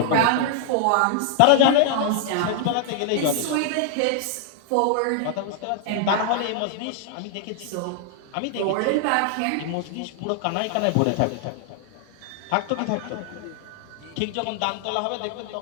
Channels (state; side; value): different; both; correlation 0.00